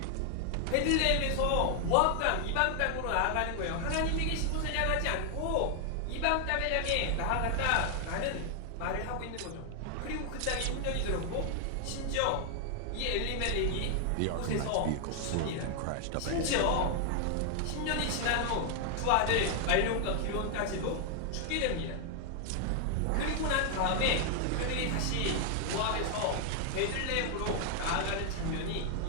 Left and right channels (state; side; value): different; both; correlation 0.00